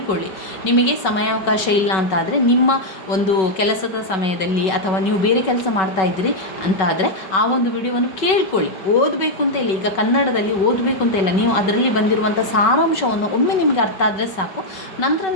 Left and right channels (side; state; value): right; late; 5.3 ms